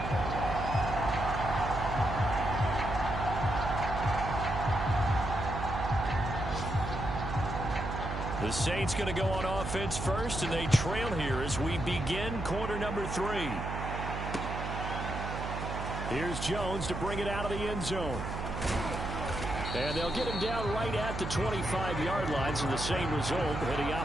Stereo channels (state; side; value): noise; right; hum, 5 dB below the sound